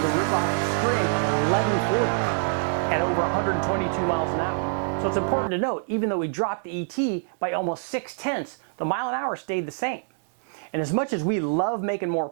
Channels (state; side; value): silent; left; digital silence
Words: to rip off a string of 1140 at over 122 miles an hour. So it's important to note, even though we dropped the ET by almost 6/10, the mile an hour stayed the same. And as much as we love making more